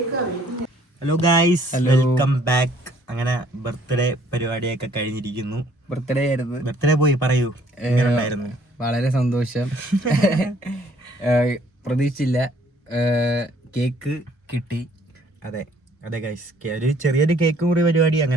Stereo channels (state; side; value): normal; both; correlation 0.61